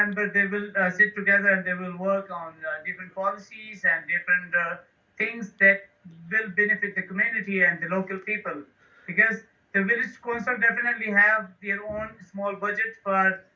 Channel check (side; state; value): both; identical; correlation 1.00